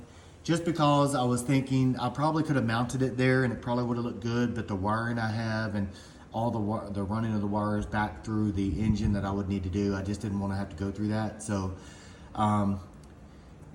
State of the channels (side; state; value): both; identical; correlation 1.00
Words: just because I was thinking I probably could have mounted it there and it probably would have looked good, but the wiring I have and all the running of the wires back through the engine that I would need to do, I just didn't want to have to go through that. So, and